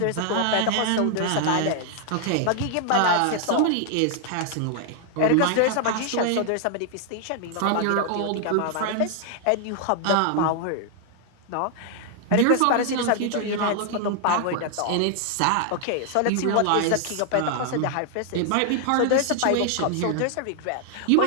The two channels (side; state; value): both; different; correlation 0.00